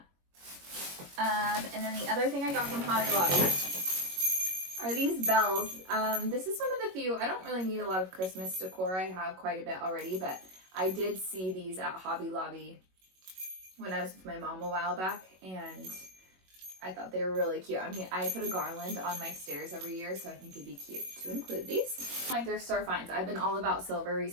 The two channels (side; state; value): left; late; 21 ms